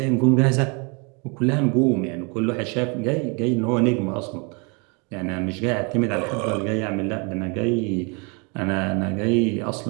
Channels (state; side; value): quieter; left; 32.5 dB